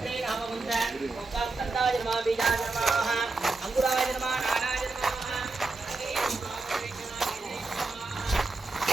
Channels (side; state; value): left; quieter; 3.5 dB